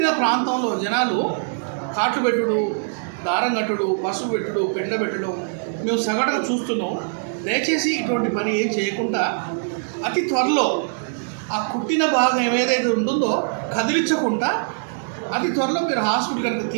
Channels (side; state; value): left; silent; digital silence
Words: ప్రాంతంలో జనాలు కాట్లు పెట్టుడు, దారం కట్టుడు, పసుపు పెట్టుడు, పెండ పెట్టడం మేము సగటుగా చూస్తున్నాం. దయచేసి ఇటువంటి పని ఏం చేయకుండా అతి త్వరలో ఆ కుట్టిన భాగం ఏదైతే ఉంటుందో కదిలించకుండా అతి త్వరలో మీరు హాస్పిటల్ కనుక